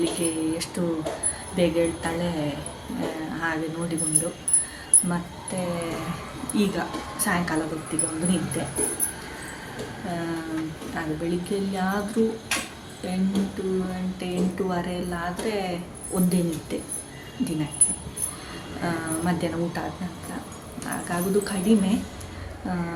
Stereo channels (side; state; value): both; identical; correlation 1.00